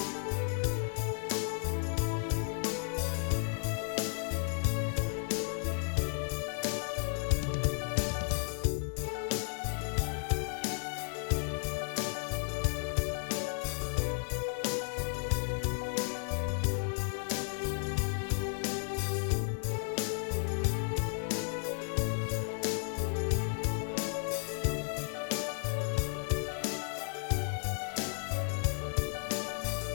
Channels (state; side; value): silent; right; 55 dB below the other